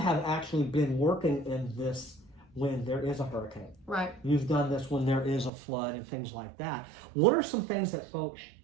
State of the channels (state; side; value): drops out; left; at 5.5 s